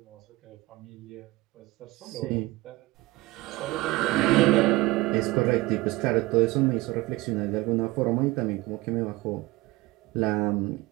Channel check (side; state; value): left; quieter; 19.9 dB